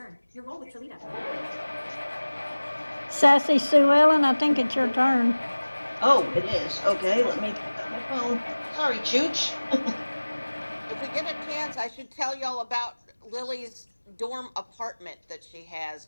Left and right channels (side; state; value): both; inverted; correlation -1.00